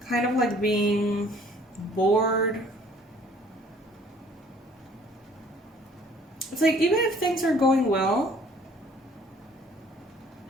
kind of like being bored. It's like even if things are going well,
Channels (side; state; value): both; normal; correlation 0.56